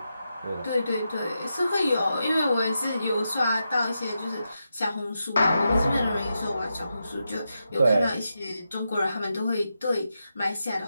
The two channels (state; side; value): inverted; both; correlation -0.86